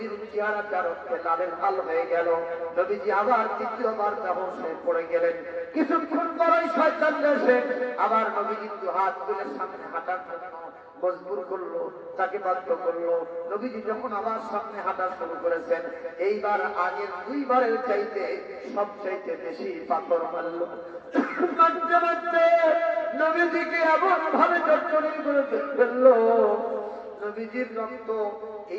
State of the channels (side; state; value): both; identical; correlation 1.00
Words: চেহারাটা রক্তে লালের লাল হয়ে গেল। নবীজি আবার দ্বিতীয়বার বেহুশ হয়ে পড়ে গেলেন। কিছুক্ষণ পরই শয়তান এসে আবার নবীজি দু হাত তুলে সামনে হাঁটার জন্য মজবুর করলো, তাকে বাধ্য করলো। নবীজি যখন আবার সামনে হাঁটা শুরু করেছেন এইবার আগের দুইবারের চাইতে সবচাইতে বেশি পাথর মারলো। মারতে মারতে নবীজিকে এমন ভাবে জর্জরিত করে ফেললো নবীজির রক্ত